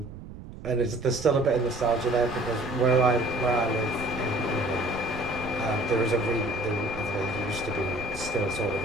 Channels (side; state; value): right; noise; rumble, 13 dB below the sound